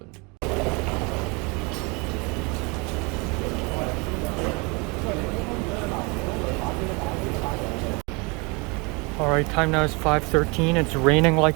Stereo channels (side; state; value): left; quieter; 29.0 dB